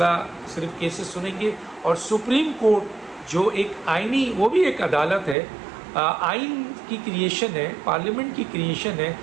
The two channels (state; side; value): drops out; left; at 5.4 s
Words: صرف کیسز سنیں گے۔ اور سپریم کورٹ جو ایک آئینی، وہ بھی ایک عدالت ہے، آئین کی کریشن ہے، پارلیمنٹ کی کریشن ہے،